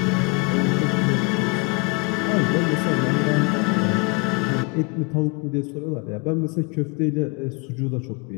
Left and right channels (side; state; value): right; quieter; 30.8 dB